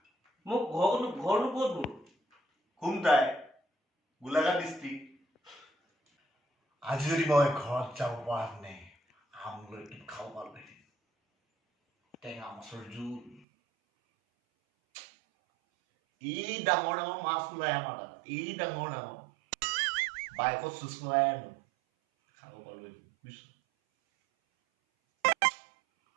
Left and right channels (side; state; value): left; drops out; at 13.4 s